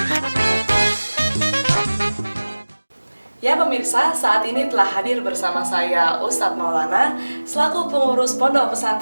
Ya pemirsa, saat ini telah hadir bersama saya Ustadz Maulana, selaku pengurus Pondok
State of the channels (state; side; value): inverted; both; correlation -1.00